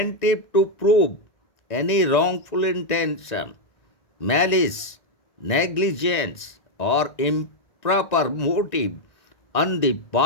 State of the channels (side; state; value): right; late; 1.9 ms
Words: to prove any wrongful intention, malice, negligence, or improper motive on the